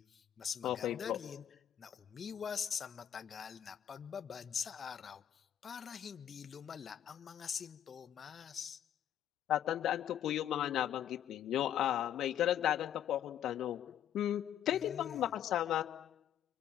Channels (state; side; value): quieter; right; 10.5 dB